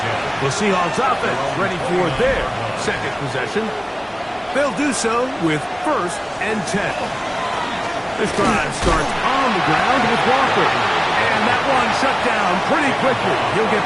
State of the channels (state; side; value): identical; both; correlation 1.00